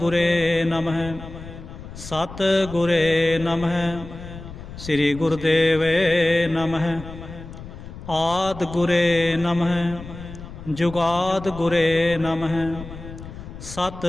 ਗੁਰੇ ਨਮਹਿ ਸਤਿ ਗੁਰੇ ਨਮਹਿ ਸ੍ਰੀ ਗੁਰਦੇਵੇ ਨਮਹਿ। ਆਦਿ ਗੁਰੇ ਨਮਹਿ ਜੁਗਾਦ ਗੁਰੇ ਨਮਹਿ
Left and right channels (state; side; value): noise; left; rumble, 13 dB below the sound